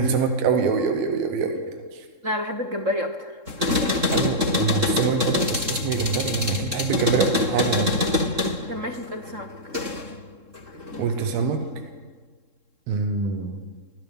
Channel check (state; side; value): late; left; 3.7 ms